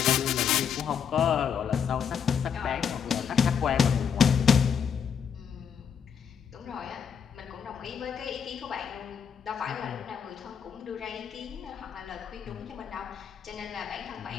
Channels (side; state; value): right; quieter; 7.4 dB